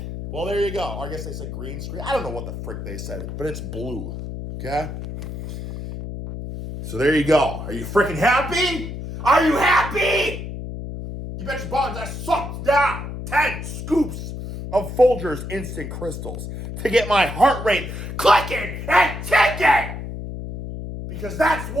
Well, there you go. I guess they said green screen. I don't know what the frick they said, but it's blue, okay? So there you go. Are you freaking happy? Are you happy? You bet your buttons I sucked down 10 scoops of Folgers instant crystals to get my heart rate clicking and ticking. Because that's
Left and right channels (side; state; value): left; noise; hum, 8 dB below the sound